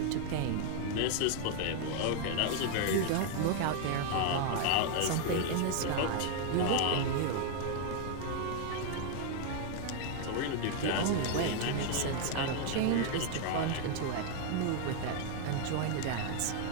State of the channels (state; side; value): different; both; correlation 0.00